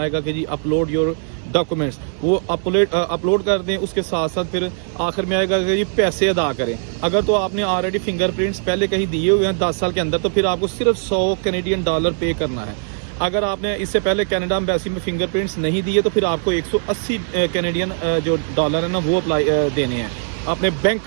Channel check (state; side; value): silent; left; 64 dB below the other